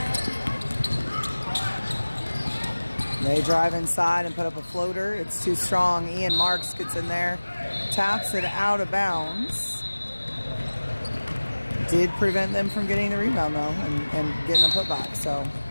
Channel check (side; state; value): both; inverted; correlation -1.00